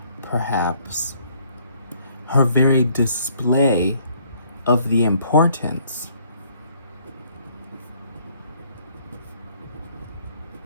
her very display of the importance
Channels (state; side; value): inverted; both; correlation -0.63